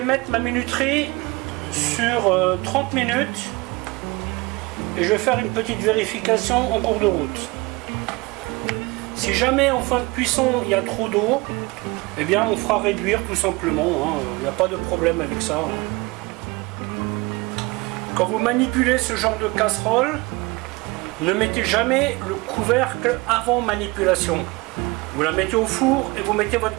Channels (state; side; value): quieter; left; 24.4 dB